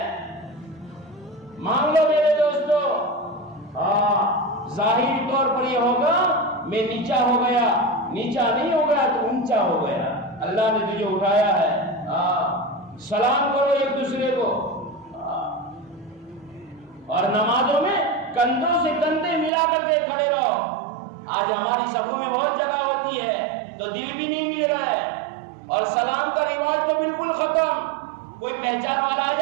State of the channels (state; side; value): drops out; left; at 19.5 s